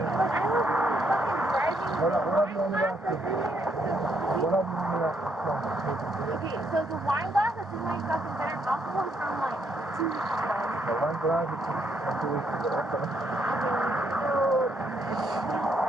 What have you only asked you? What have you only asked you? Okay, so the wine glass that's in my fucking better alcohol is from like 2 weeks ago. The wine glass is from 2 weeks ago. Okay.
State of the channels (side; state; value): both; normal; correlation 0.74